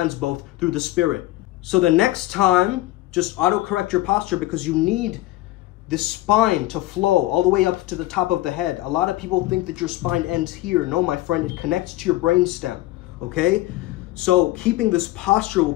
both through the spirit. So the next time, just auto-correct your posture because you need this spine to flow all the way up to the top of the head. A lot of people think that your spine ends here. No, my friend, it connects to your brainstem, okay? So keeping this posture will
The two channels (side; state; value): right; quieter; 17.0 dB